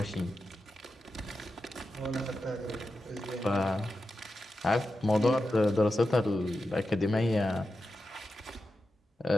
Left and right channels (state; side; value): normal; both; correlation 0.90